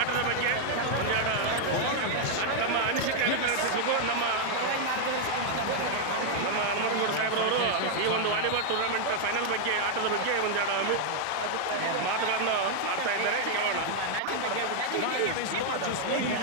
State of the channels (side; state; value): both; different; correlation -0.01